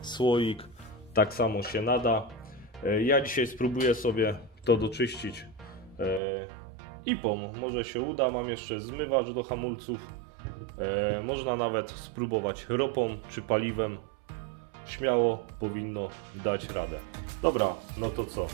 słoik, tak samo się nada. Ja dzisiaj spróbuję sobie to doczyścić IPą. Może się uda. Mam jeszcze zmywacz do hamulców. Można nawet spróbować ropą czy paliwem. Śmiało powinno dać radę. Dobra, no to co?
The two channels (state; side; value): drops out; left; at 6.2 s